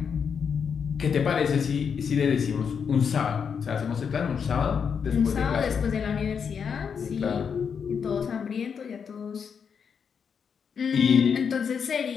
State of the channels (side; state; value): right; quieter; 6.7 dB